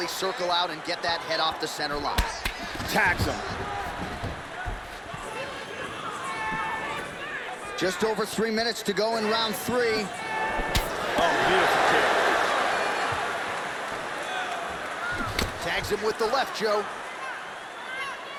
circle out and get that head off the center line. Tags him. Just over 3 minutes to go in round three. Oh, beautiful kick. Tags him with the left, Joe.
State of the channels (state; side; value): identical; both; correlation 1.00